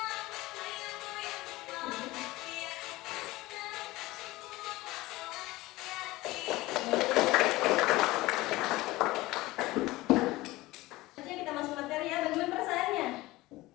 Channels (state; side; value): quieter; right; 19.1 dB